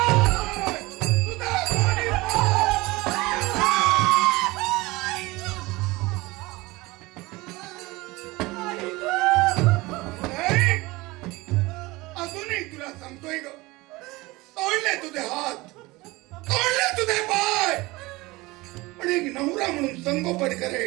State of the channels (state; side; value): quieter; left; 21.6 dB